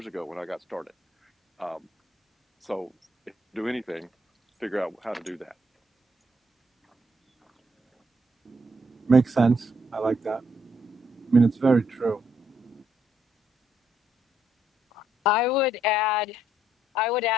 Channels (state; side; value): normal; both; correlation 0.73